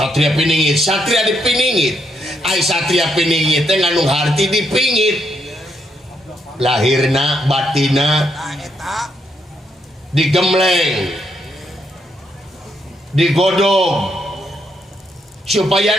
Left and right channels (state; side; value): normal; both; correlation 0.77